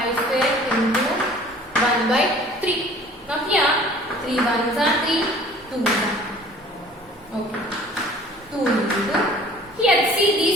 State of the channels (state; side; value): normal; both; correlation 0.50